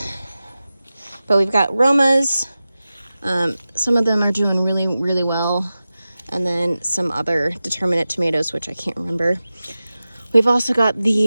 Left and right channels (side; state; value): both; inverted; correlation -0.95